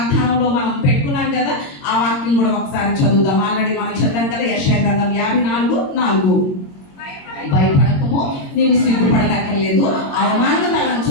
మనం పెట్టుకున్నాం కదా, ఆ వాక్యం కూడా ఒకసారి చదువుదాం. ఆల్రెడీ మనం చదివాం కదా. యెషయా గ్రంథం 54:4. భయపడకము, నీవు సిగ్గుపడనక్కర్లేదు, అవమానం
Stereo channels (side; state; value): right; late; 22 ms